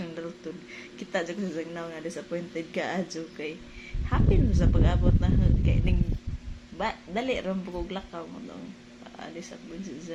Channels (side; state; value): both; identical; correlation 1.00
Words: Dalton kita jud sa zagnaw na disappointed ka adyo kay happy mo sa pag-abot na kay ning dali ram pug lakaw mo tong disappointed